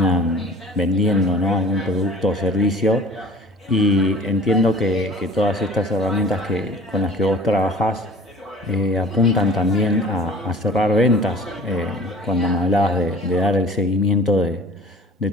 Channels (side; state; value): both; normal; correlation 0.45